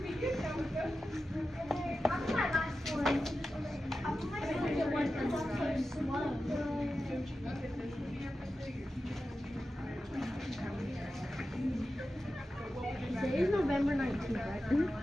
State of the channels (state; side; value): normal; both; correlation 0.92